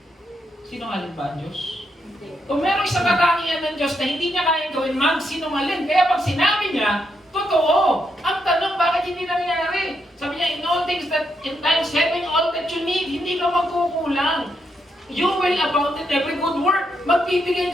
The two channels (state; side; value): normal; both; correlation 0.80